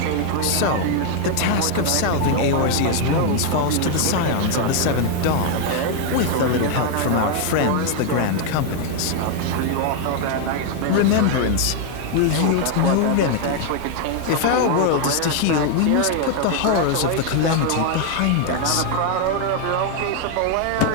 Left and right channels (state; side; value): different; both; correlation 0.01